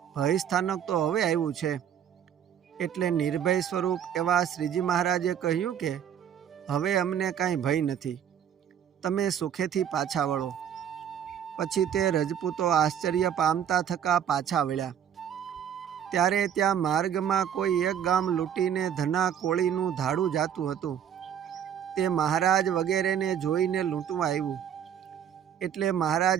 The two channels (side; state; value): left; quieter; 9.2 dB